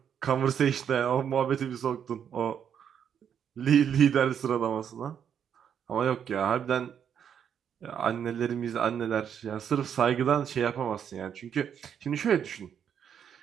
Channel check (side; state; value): left; quieter; 8.3 dB